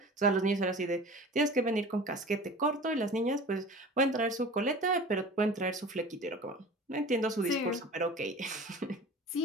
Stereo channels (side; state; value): both; normal; correlation 0.39